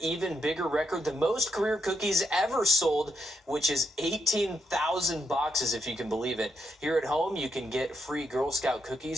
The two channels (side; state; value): both; normal; correlation 0.79